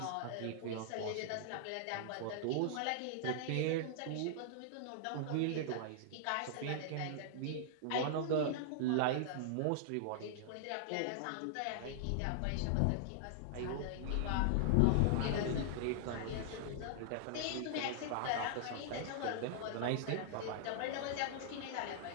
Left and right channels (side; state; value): both; different; correlation -0.01